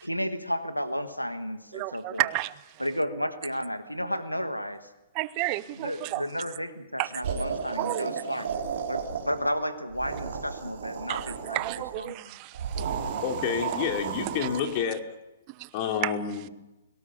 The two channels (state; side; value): inverted; both; correlation -0.50